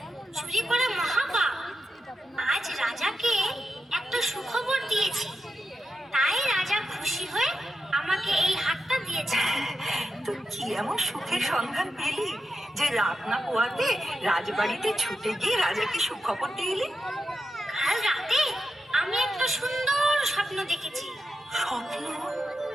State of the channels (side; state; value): both; normal; correlation 0.88